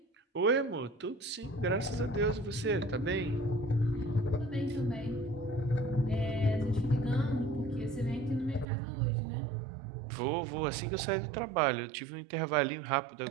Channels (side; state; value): left; drops out; at 8.7 s